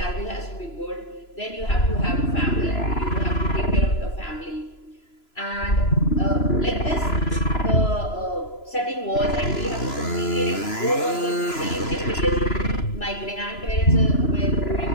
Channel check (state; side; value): late; right; 3.0 ms